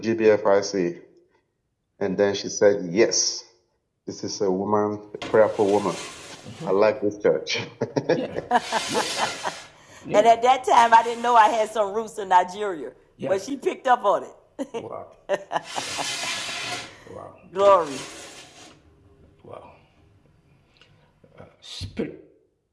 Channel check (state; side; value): identical; both; correlation 1.00